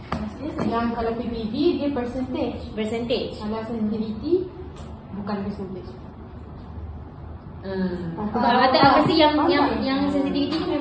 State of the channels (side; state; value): both; identical; correlation 1.00